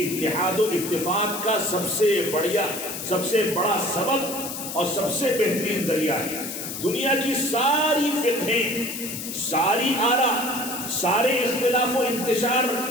اتحاد و اتفاق کا سب سے بڑا سبب اور سب سے بہترین ذریعہ ہے۔ دنیا کی ساری فقہیں، ساری آراء، سارے اختلاف و انتشار،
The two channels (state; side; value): noise; left; hiss, 7 dB below the sound